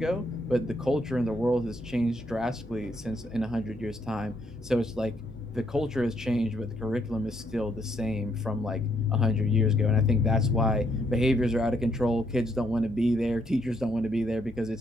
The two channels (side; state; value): both; normal; correlation 0.73